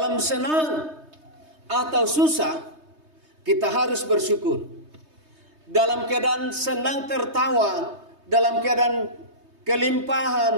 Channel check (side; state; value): left; late; 3.2 ms